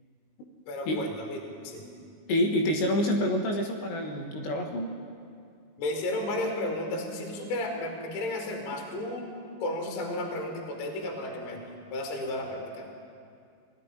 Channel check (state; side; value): late; right; 19 ms